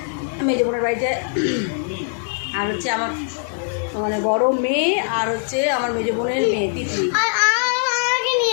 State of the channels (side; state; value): right; silent; 65 dB below the other